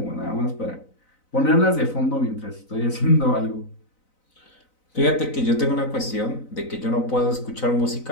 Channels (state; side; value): late; right; 4.0 ms